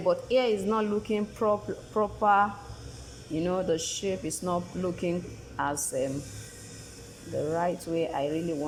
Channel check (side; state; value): both; identical; correlation 1.00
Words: but here is not looking proper. You know, the shape is not looking as the right way I really